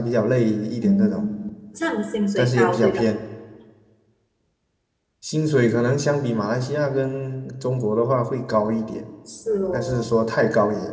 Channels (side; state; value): both; identical; correlation 1.00